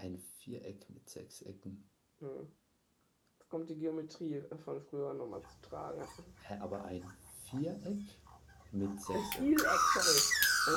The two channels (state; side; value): identical; both; correlation 1.00